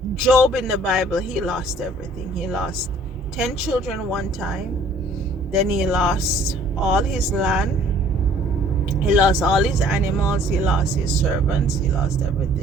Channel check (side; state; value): both; normal; correlation 0.56